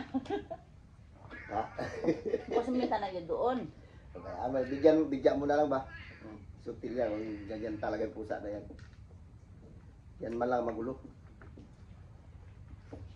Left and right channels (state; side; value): identical; both; correlation 1.00